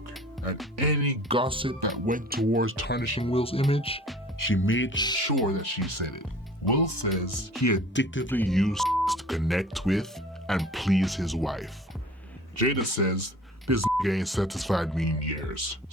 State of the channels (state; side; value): normal; both; correlation 0.46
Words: and any gossip that went towards tarnishing Will's image, she made sure that she said it. Will says he addictively used to connect with and please his wife. Jada says this ain't satisfied me in years.